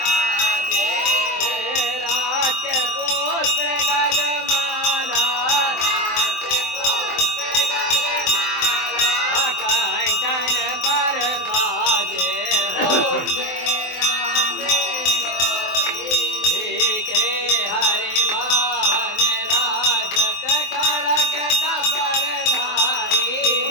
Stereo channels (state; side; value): late; right; 23 ms